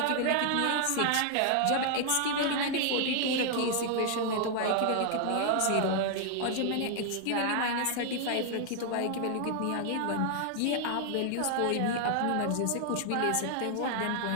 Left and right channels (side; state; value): both; different; correlation 0.00